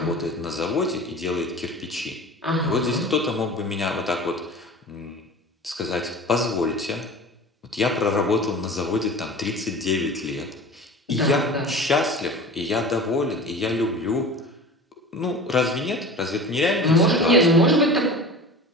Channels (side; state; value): both; normal; correlation 0.37